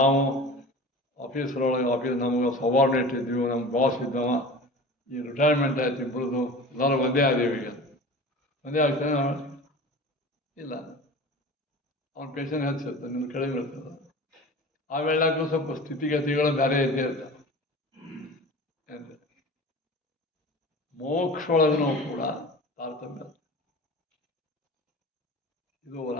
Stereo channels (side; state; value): both; normal; correlation 0.36